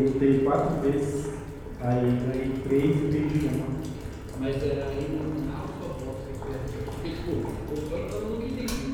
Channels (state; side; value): identical; both; correlation 1.00